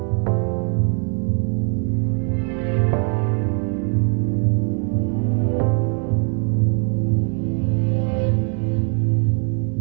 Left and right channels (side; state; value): left; quieter; 39.0 dB